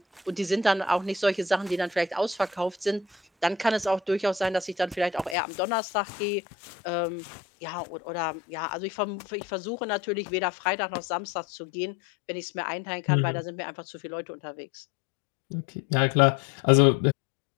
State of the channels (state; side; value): drops out; right; at 5.4 s